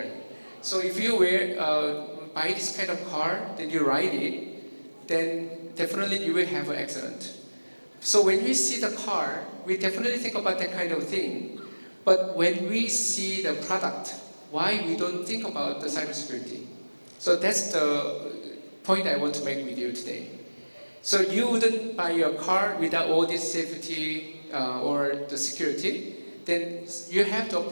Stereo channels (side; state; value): both; inverted; correlation -1.00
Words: So if you wear buy this kind of car, then you ride it, then definitely you will have an accident. So when we see the car, we definitely think about that kind of thing. But when we see the product, why we don't think about the cybersecurity? So that's the point I want to make with you today. So you wouldn't buy your car without all this safety or the security, then you have to